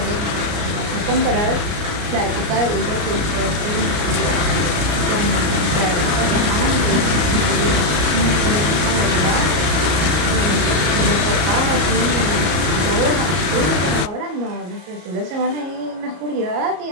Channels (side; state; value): left; late; 33 ms